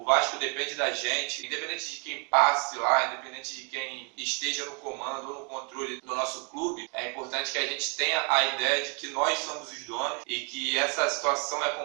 Vasco depende da gente, independente de quem passe lá, independente de quem esteja no comando ou no controle do nosso clube, é importante que a gente tenha a ideia de que nós somos os donos bola e que essa situação é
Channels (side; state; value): left; quieter; 36.0 dB